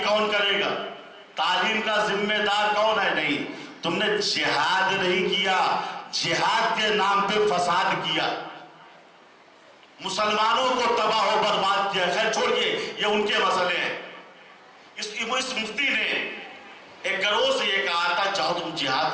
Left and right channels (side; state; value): both; identical; correlation 1.00